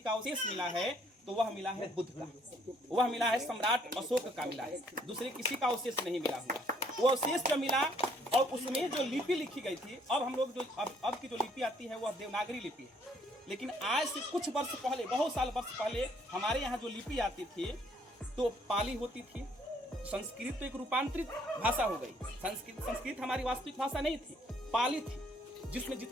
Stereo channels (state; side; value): normal; both; correlation 0.65